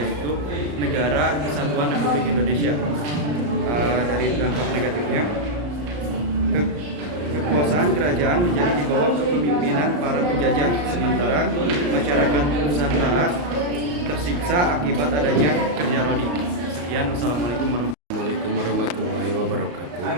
Negara Kesatuan Republik Indonesia. Dari dampak negatifnya, kekuasaan kerajaan menjadi di bawah kepemimpinan para penjajah, sementara masyarakat Nusantara tersiksa akibat adanya kerja rodi. Sekian, wassalamualaikum warahmatullahi wabarakatuh.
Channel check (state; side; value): late; left; 34 ms